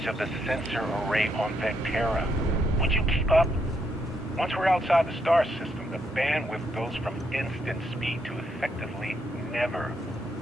of the sensor array on Vectera. Would you keep up? Once we're outside the star system, the bandwidth goes from instant speed to effectively never.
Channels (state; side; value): normal; both; correlation 0.77